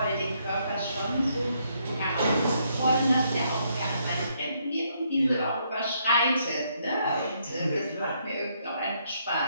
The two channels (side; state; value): both; inverted; correlation -0.73